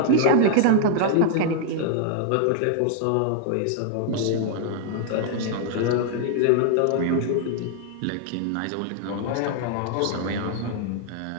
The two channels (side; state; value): both; different; correlation 0.00